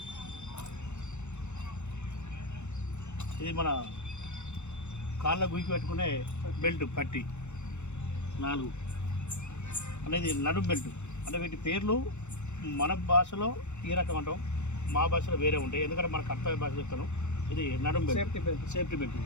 ఇది మన కాళ్ళ గురికి పెట్టుకునే బెల్ట్ పట్టి 4 అనేది నడుం బెల్ట్. అంటే వీటి పేర్లు మన భాషలో ఈ రకం అంటాం, మా భాషలో వేరే ఉంటాయి. ఎందుకంటే మన కర్తవ్య భాష చెప్తాను. ఇది నడుం బెల్ట్, సేఫ్టీ బెల్ట్.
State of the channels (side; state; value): right; late; 0.83 ms